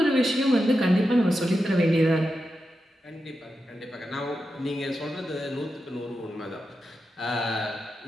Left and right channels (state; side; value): normal; both; correlation 0.89